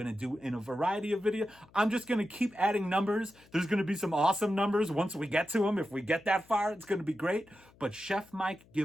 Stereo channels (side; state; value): left; noise; hum, 28 dB below the sound